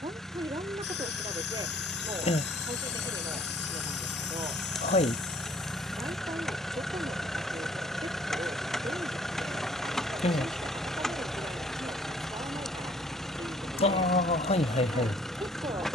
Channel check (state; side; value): normal; both; correlation 0.58